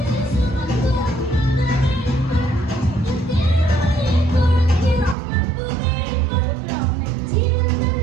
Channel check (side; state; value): left; drops out; at 5.2 s